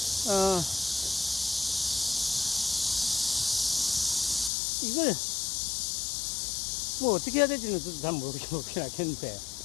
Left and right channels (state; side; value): drops out; right; at 4.5 s